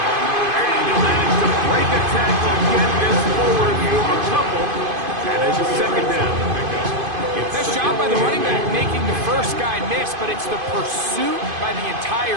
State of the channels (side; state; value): left; late; 2.5 ms